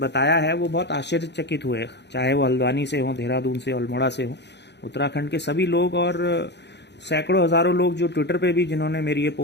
है वो बहुत आश्चर्यचकित हुए, चाहे वो हल्द्वानी से हो, देहरादून से, अल्मोड़ा से हो, उत्तराखंड के सभी लोग, और सैकड़ों हजारों लोग जो ट्विटर पे भी जिन्होंने मेरी ये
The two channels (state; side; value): late; right; 0.50 ms